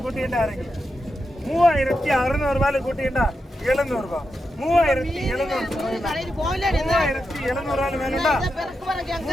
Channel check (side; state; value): both; normal; correlation 0.87